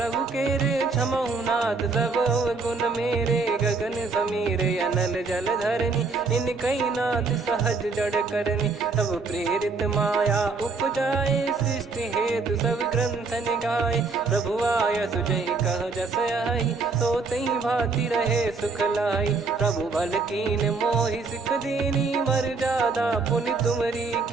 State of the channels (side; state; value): left; quieter; 4.3 dB